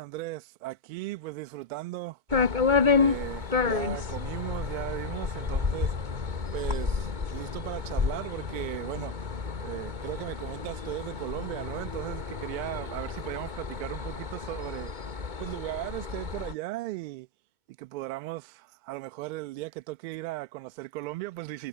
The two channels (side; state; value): left; late; 2.2 ms